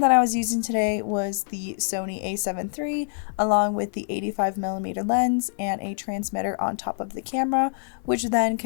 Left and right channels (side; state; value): right; silent; digital silence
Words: that I was using today was the Sony A7 III, along with the 85mm lens and a transmitter on top of the camera, which then